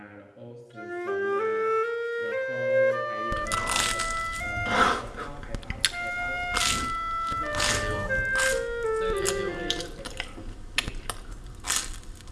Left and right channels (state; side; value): identical; both; correlation 1.00